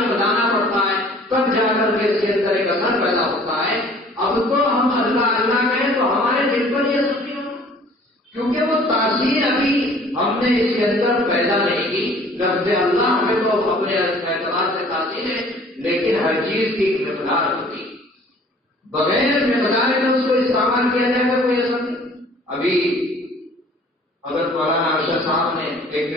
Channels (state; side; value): normal; both; correlation 0.52